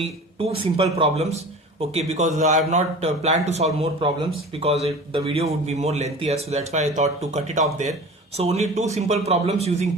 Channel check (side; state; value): both; normal; correlation 0.38